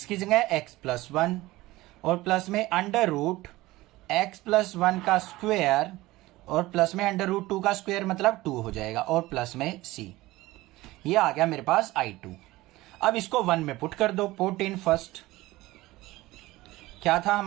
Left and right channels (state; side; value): quieter; left; 18.5 dB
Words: की जगह x + 1 और प्लस में √x + 1 का स्क्वायर और प्लस में √2 का स्क्वायर मतलब 2 हो जाएगा, और प्लस में c। ये आ गया मेरे पास I2। अब इसको 1 में पुट कर दो, पुट इन फर्स्ट। क्या था